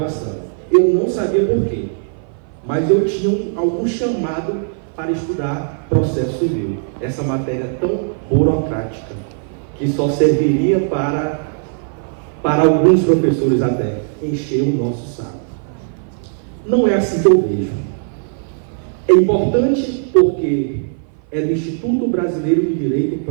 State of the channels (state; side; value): silent; left; 57 dB below the other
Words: Eu não sabia por quê, mas eu tinha algum chamado para estudar processo civil. Essa matéria tão burocrática, que só serviria para alguns professores até encher o nosso saco. Não é assim que eu vejo. É importante porque é do Instituto Brasileiro de Direito